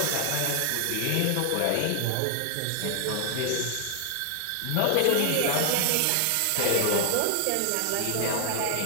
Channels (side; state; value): both; different; correlation 0.00